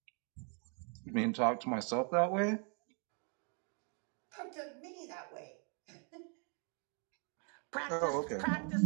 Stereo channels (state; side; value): quieter; left; 38.5 dB